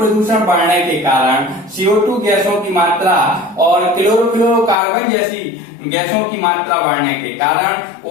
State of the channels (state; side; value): drops out; right; at 4.8 s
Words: बढ़ने के कारण CO2 गैसों की मात्रा और क्लोरोफ्लोरोकार्बन जैसी गैसों की मात्रा बढ़ने के कारण